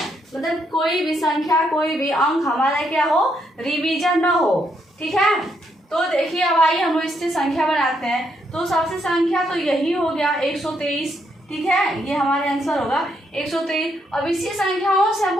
मतलब कोई भी संख्या, कोई भी अंक हमारा क्या हो, रिवीजन ना हो, ठीक है। तो देखिए अब आइए हम इससे संख्या बनाते हैं। तो सबसे संख्या तो यही हो गया 123, ठीक है, ये हमारे आंसर होगा 123। अब इसी संख्याओं से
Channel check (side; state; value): both; normal; correlation 0.76